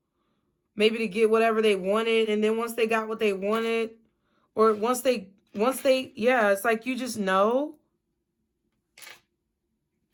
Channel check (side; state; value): both; identical; correlation 1.00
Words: Maybe to get whatever they wanted. And then once they got what they wanted, or once they, yeah, it's like you just know.